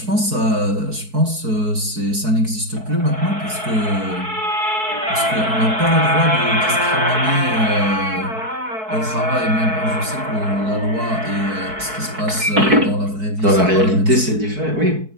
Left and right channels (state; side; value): late; left; 4.6 ms